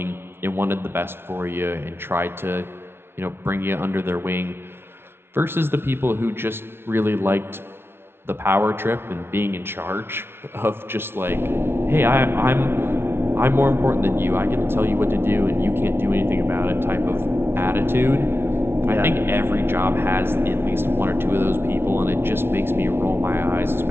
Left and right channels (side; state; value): left; late; 0.12 ms